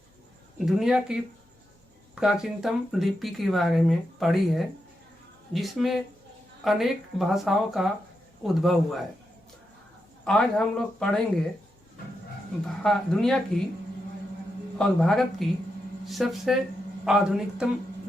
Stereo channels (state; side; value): normal; both; correlation 0.86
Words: दुनिया की प्राचीनतम लिपि के बारे में पढ़ी है, जिसमें अनेक भाषाओं का उद्भव हुआ है। आज हम लोग पढ़ेंगे दुनिया की और भारत की सबसे आधुनिकतम